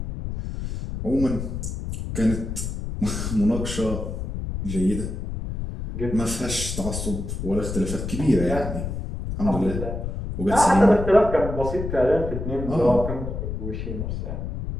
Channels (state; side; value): noise; left; rumble, 5 dB below the sound